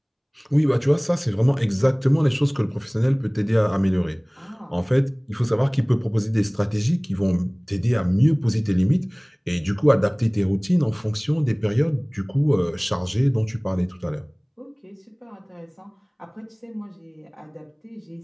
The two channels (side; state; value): both; identical; correlation 1.00